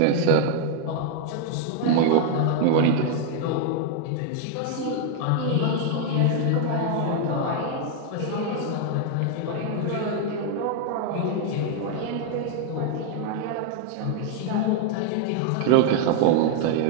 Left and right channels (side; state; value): both; different; correlation 0.00